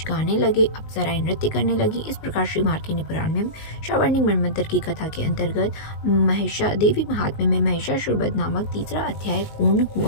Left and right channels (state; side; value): late; right; 19 ms